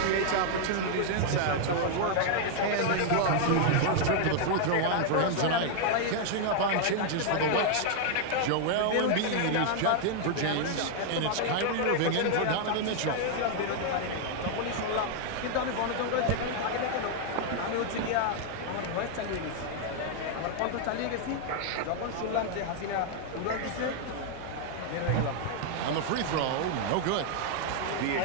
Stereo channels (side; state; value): both; different; correlation 0.00